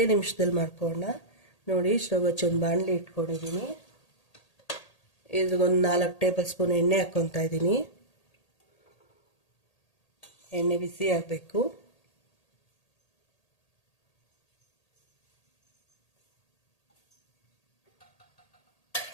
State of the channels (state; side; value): late; right; 1.8 ms